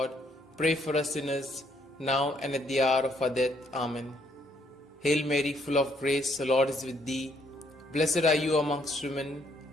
pray for us sinners, now and at the hour of our death. Amen. Hail Mary, full of grace, the Lord is with thee. Blessed are you amongst women,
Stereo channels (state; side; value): normal; both; correlation 0.70